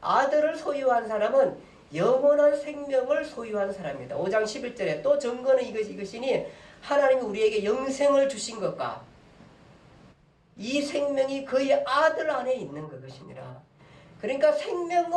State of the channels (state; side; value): identical; both; correlation 1.00